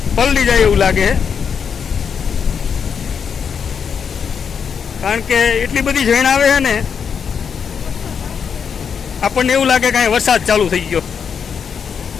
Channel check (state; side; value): quieter; right; 6.8 dB